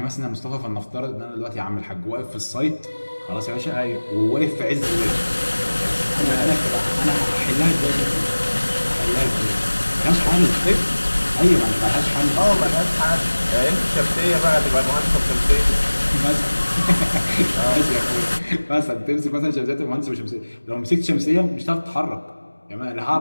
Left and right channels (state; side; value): inverted; both; correlation -1.00